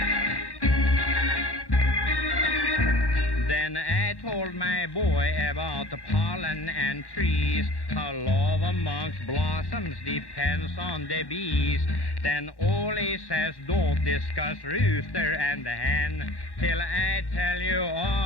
Then I told my boy about the pollen and trees, how love amongst blossoms depends on the bees. Then Ollie says, don't discuss rooster and the hen till I tell you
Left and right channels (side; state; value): right; late; 1.1 ms